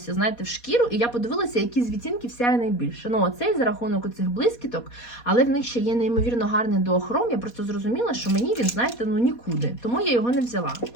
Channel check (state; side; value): late; right; 4.2 ms